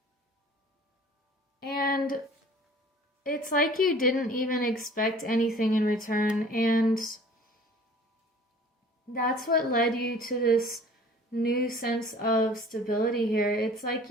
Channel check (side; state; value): both; normal; correlation 0.48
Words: And it's like you didn't even expect anything in return, and that's what led you to this new sense of stability here. It's like